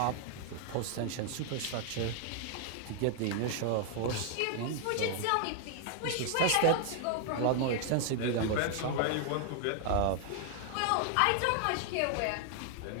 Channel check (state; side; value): different; both; correlation 0.00